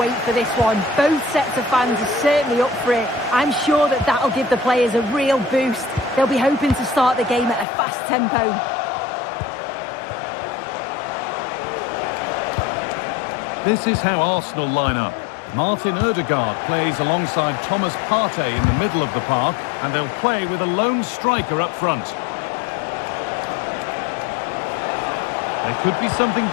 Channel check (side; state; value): right; drops out; at 7.7 s